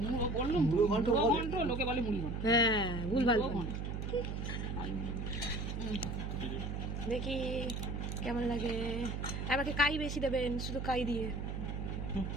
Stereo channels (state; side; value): noise; right; hum, 3 dB below the sound